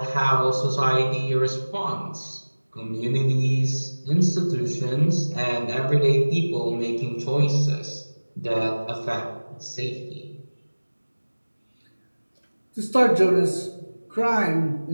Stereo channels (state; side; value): inverted; both; correlation -1.00